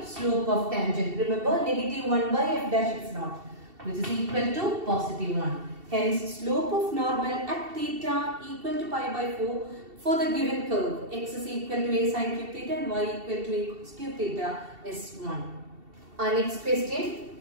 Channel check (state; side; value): late; left; 2.7 ms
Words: slope of tangent. Remember, negative 1 by f dash x naught, which is equal to positive 1. Hence, slope of normal at theta equal to pi by 4 for the given curve. X is equal to a sin cube theta and y equal to a cos cube theta is 1. Our next